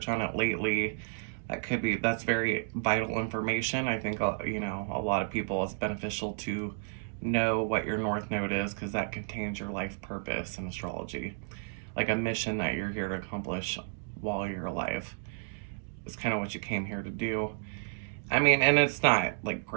on it lately. That's very vital information. I think, a lot of people, it's beneficial to know what your North Node is, because that contains your life purpose in astrology. Like a mission that you're here to accomplish while you're alive. It's kind of what you came here to do. I mean, and it's not like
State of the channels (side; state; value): left; silent; digital silence